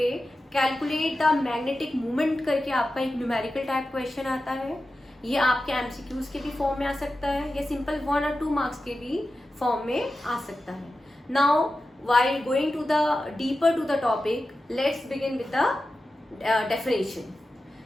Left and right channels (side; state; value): both; normal; correlation 0.93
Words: कैलकुलेट द मैग्नेटिक मूवमेंट करके आपका एक न्यूमेरिकल टाइप क्वेश्चन आता है. ये आपके एमसीक्यूज के भी फॉर्म में आ सकता है या सिंपल 1 और 2 मार्क्स के भी फॉर्म में आ सकता है. Now while going to the deeper to the topic, let's begin with the definition.